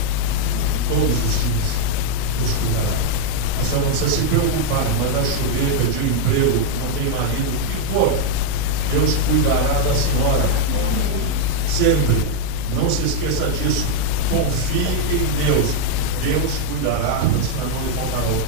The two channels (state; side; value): different; both; correlation 0.00